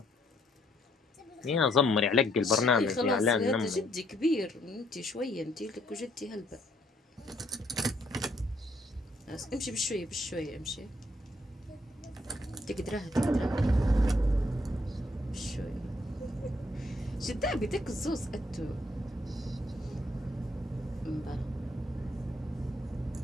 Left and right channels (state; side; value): normal; both; correlation 0.70